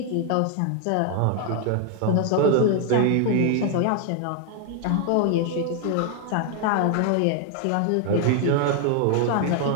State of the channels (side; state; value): both; different; correlation 0.00